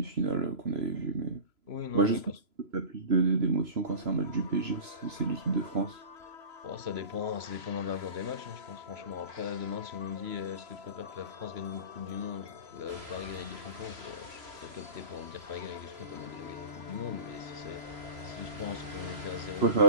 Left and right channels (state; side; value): late; left; 3.0 ms